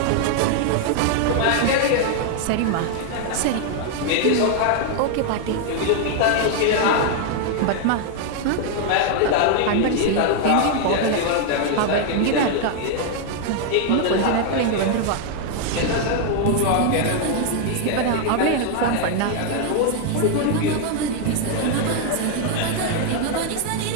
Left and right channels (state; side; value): different; both; correlation 0.00